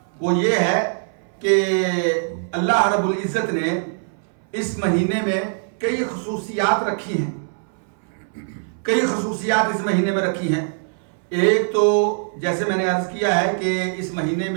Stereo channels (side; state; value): left; silent; 60 dB below the other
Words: وہ یہ ہے کہ اللہ رب العزت نے اس مہینے میں کئی خصوصیات رکھی ہیں، کئی خصوصیات اس مہینے میں رکھی ہیں۔ ایک تو جیسے میں نے عرض کیا ہے کہ اس مہینے